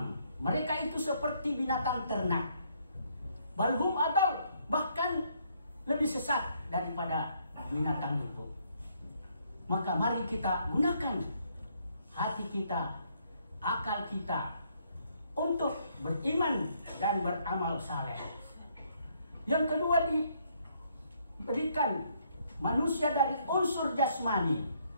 Mereka itu seperti binatang ternak. Balhum adal, bahkan lebih sesat daripada binatang itu. Maka mari kita gunakan hati kita, akal kita untuk beriman dan beramal saleh. Yang kedua, diberikan manusia dari unsur jasmani.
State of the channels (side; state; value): both; inverted; correlation -0.70